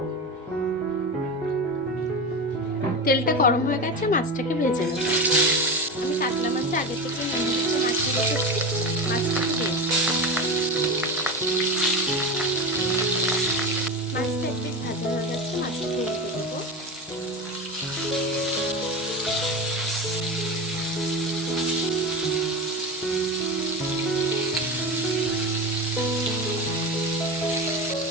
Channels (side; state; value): both; normal; correlation 0.23